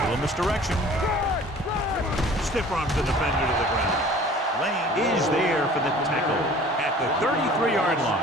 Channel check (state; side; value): normal; both; correlation 0.47